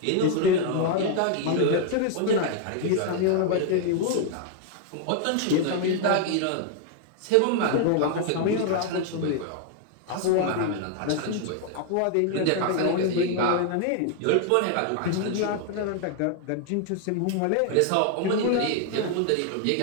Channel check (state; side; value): different; both; correlation 0.00